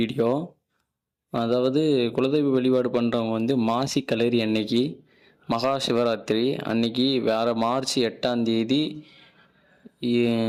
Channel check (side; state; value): both; identical; correlation 1.00